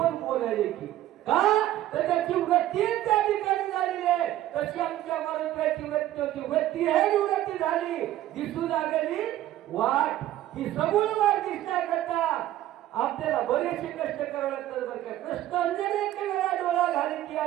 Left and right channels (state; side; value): quieter; left; 13.7 dB